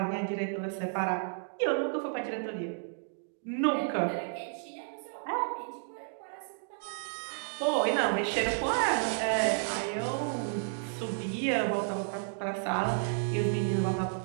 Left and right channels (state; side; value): silent; left; digital silence